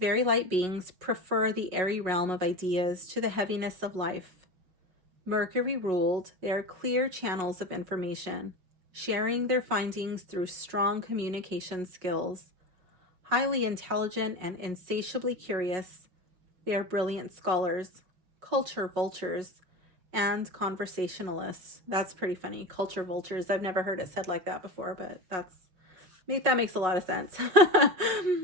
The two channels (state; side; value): late; left; 5.5 ms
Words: light beings prefer the airy realm of ideas to the heaviness of life. Mercury ruled, they are clear channels of information, sharing their findings through strong communication skills. Highly intelligent and insatiably curious, they are brilliant scholars, culture vultures, and conversationalists. That's pretty funny. Culture vultures. I've never heard it said like that before, but that makes a lot of sense.